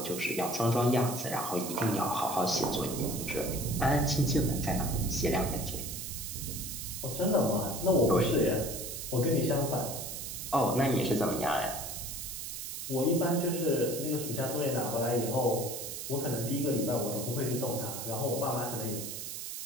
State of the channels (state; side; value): noise; right; hiss, 7 dB below the sound